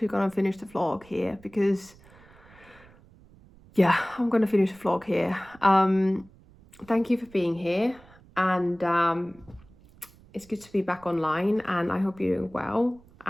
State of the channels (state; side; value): noise; right; rumble, 25 dB below the sound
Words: gonna finish the vlog here, because yeah, I'm gonna finish the vlog here. Thank you for being here, and it's good to be back online, and I hope you're doing well,